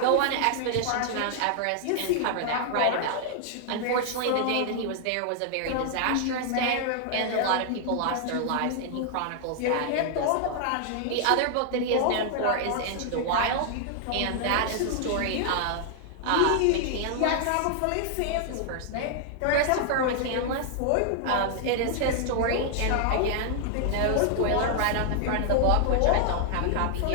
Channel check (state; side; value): different; both; correlation 0.00